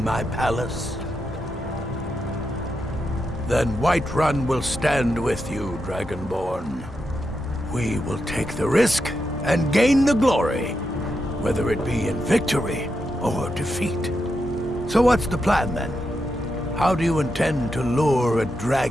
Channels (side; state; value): both; normal; correlation 0.85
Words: my palace? Then Whiterun will stand with you, Dragonborn. We will take the risk and gain the glory, whether it be in victory or defeat. So what's the plan, then? How do you intend to lure a